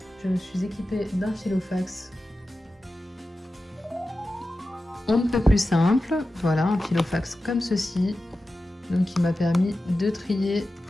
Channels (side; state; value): both; normal; correlation 0.93